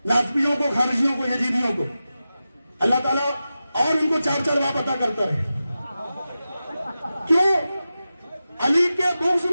नाज़मियों को, खारिजियों को, यजीदियों को। अल्लाह ताला और उनको चार चार बात अता करता रहे। क्यों? अली के बुग़्ज़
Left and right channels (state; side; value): inverted; both; correlation -0.93